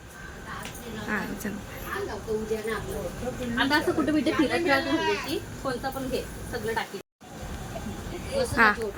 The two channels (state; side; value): identical; both; correlation 1.00